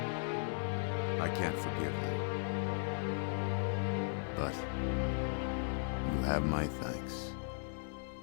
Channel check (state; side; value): silent; right; 53 dB below the other